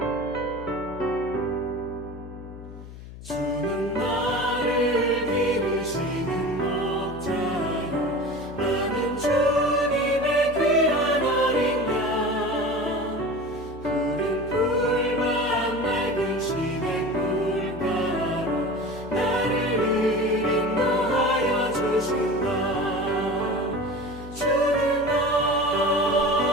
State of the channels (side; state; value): left; noise; hum, 14 dB below the sound